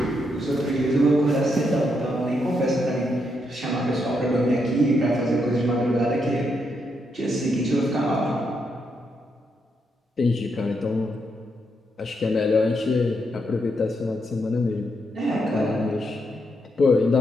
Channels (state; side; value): normal; both; correlation 0.80